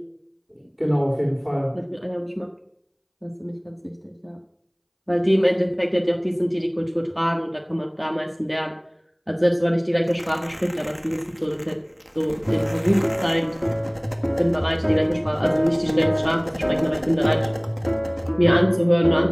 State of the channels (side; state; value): both; identical; correlation 1.00